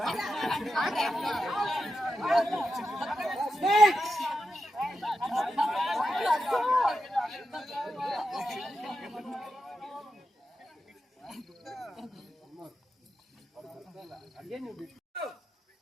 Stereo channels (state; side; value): normal; both; correlation 0.88